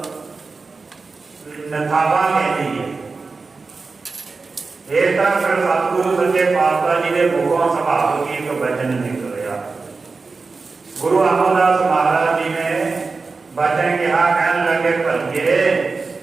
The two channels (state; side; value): quieter; left; 4.2 dB